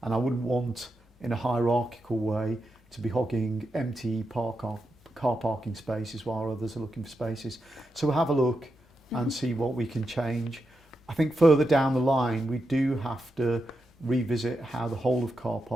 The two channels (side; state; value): both; normal; correlation 0.86